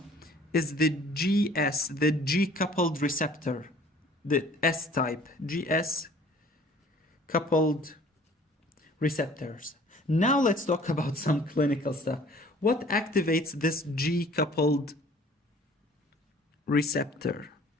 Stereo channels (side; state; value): both; normal; correlation 0.52